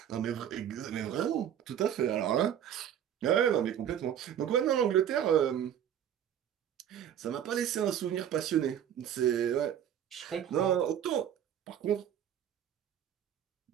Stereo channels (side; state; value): left; quieter; 9.8 dB